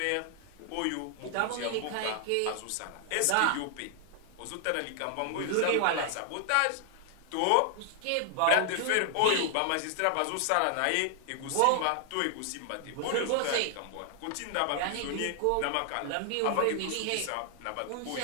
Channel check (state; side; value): different; both; correlation 0.00